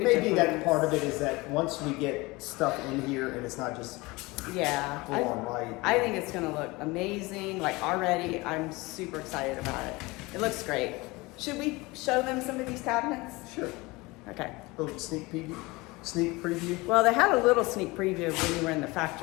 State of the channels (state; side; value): quieter; right; 23.0 dB